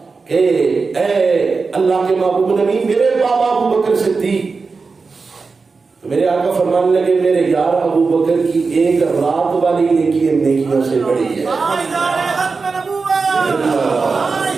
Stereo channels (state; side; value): quieter; left; 4.5 dB